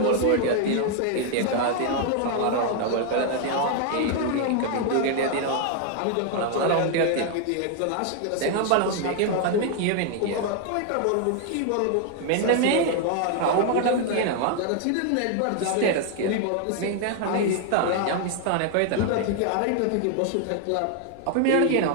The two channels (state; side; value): different; both; correlation 0.00